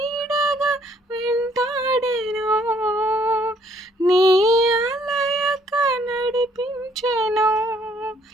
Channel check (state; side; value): normal; both; correlation 0.65